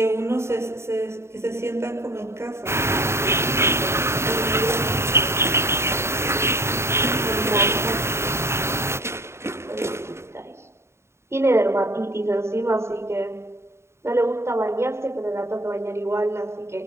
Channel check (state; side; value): late; left; 0.13 ms